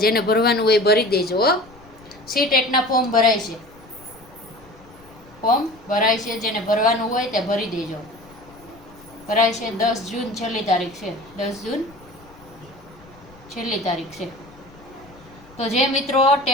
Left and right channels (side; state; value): left; noise; rumble, 24 dB below the sound